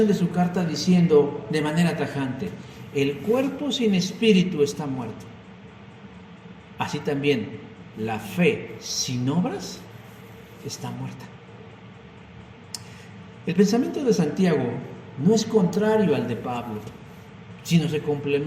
de su carta diciendo de manera tajante: el cuerpo sin espíritu está muerto. Así también la fe sin obras está muerta. El pensamiento de Santiago no es contrario al de Pablo, sino se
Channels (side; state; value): both; identical; correlation 1.00